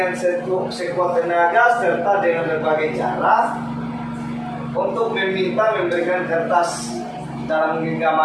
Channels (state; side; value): identical; both; correlation 1.00